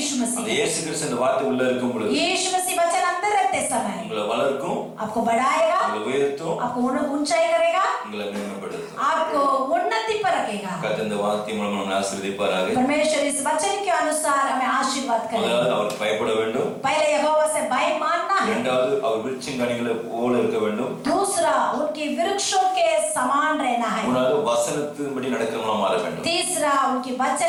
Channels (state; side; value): identical; both; correlation 1.00